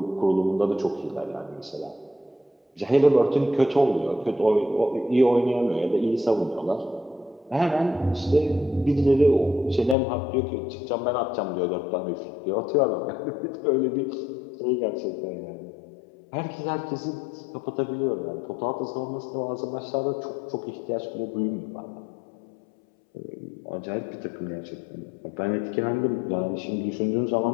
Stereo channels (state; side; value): drops out; right; at 10.0 s